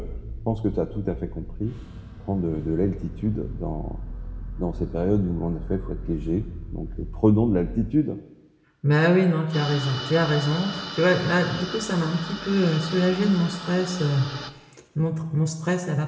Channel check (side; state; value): both; identical; correlation 1.00